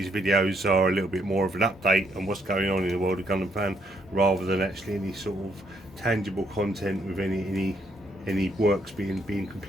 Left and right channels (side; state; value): both; normal; correlation 0.73